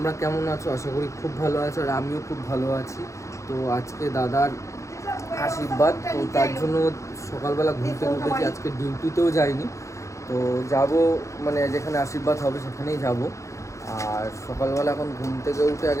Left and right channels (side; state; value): right; late; 0.15 ms